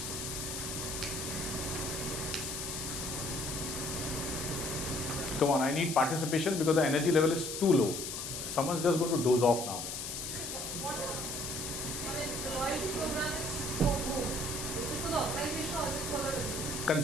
Come on, I need participation because the energy level is too low. Someone's just going to doze off now. What is, the loyalty program is for whom? Is it for the organization or is it for the consumer?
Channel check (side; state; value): left; noise; hiss, 5 dB below the sound